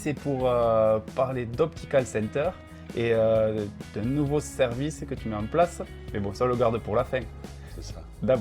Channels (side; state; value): both; identical; correlation 1.00